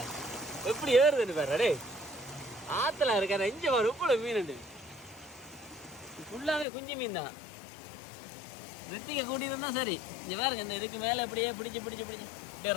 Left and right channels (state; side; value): drops out; right; at 6.7 s